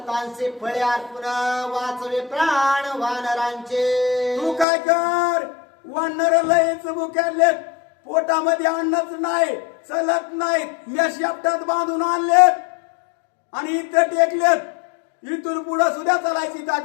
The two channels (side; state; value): right; drops out; at 4.7 s